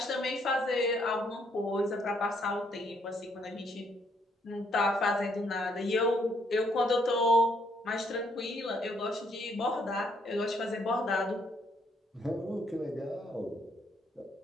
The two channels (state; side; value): normal; both; correlation 0.71